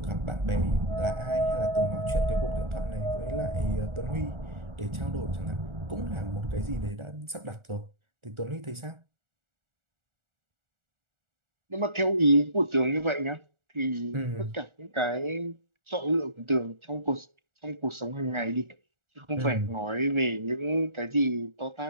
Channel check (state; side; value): late; left; 1.4 ms